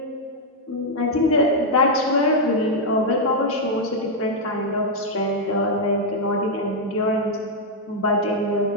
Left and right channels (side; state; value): both; normal; correlation -0.02